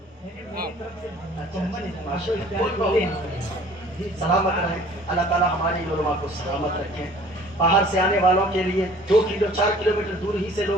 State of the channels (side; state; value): both; normal; correlation 0.51